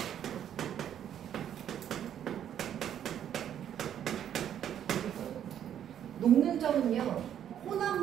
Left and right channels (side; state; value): left; quieter; 9.9 dB